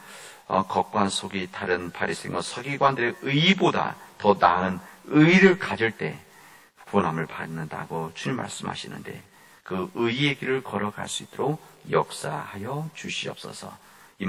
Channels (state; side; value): identical; both; correlation 1.00